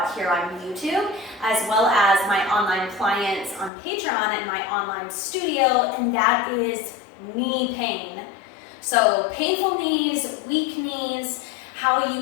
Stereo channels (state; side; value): drops out; right; at 3.7 s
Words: here on YouTube, as well as my online clients on Patreon and my online studio, and that is knee pain. So painful knees, weak knees, how you